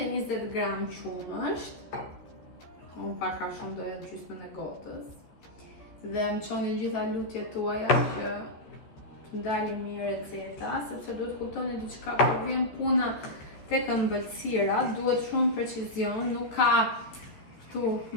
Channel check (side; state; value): right; late; 13 ms